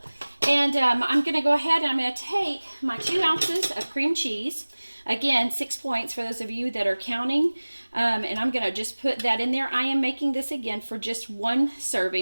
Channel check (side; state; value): both; inverted; correlation -1.00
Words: And I'm going to go ahead and I'm going to take my 2 ounces of cream cheese. Again, 6 points for those of you that are counting. And I'm going to just put that in there. I am making this again for just 1